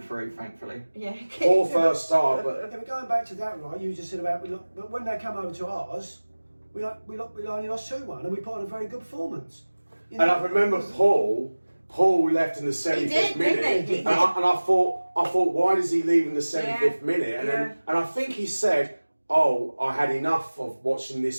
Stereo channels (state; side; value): inverted; both; correlation -1.00